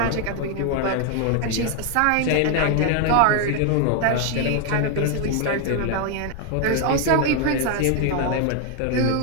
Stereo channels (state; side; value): different; both; correlation 0.00